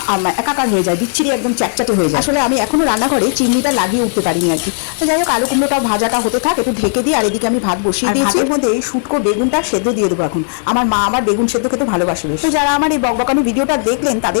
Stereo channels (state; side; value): silent; right; digital silence